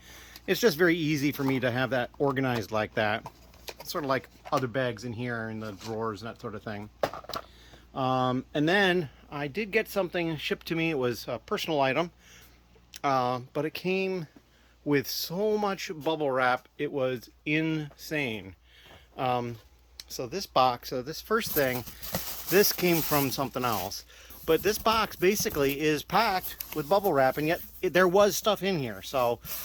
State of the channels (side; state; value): both; identical; correlation 1.00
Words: it's just very easy for me to have that organized like that. Sort of like other bags in here in the drawers and that sort of thing. And then I did get something shipped to me. It was a personal item, but it came with so much bubble wrap. It was insane. So this box, this first thing, this came from something else. But this box basically is packed with bubble wrap, and yet there was stuff in here. So